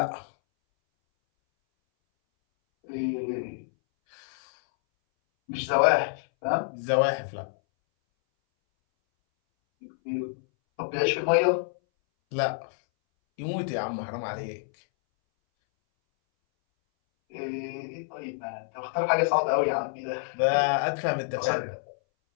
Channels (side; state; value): right; silent; 59 dB below the other